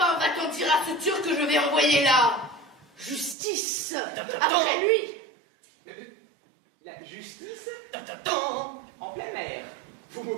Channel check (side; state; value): left; drops out; at 3.4 s